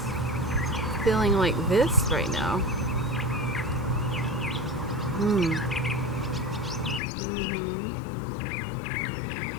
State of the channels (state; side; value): drops out; right; at 7.0 s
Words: feeling like this right now.